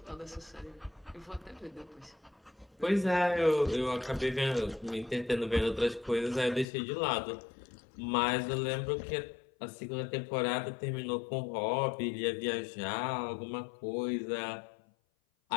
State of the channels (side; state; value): right; drops out; at 6.7 s